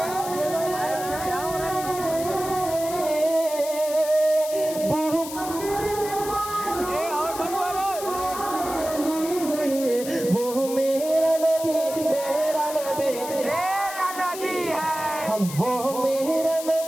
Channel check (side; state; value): left; noise; hiss, 10 dB below the sound